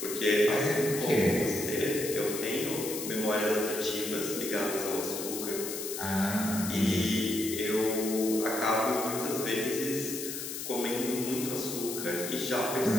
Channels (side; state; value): left; noise; hiss, 6 dB below the sound